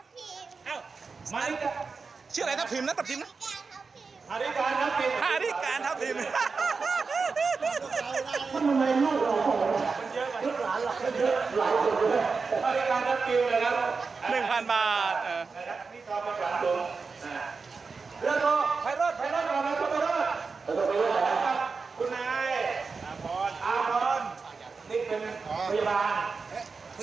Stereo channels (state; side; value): quieter; left; 4.7 dB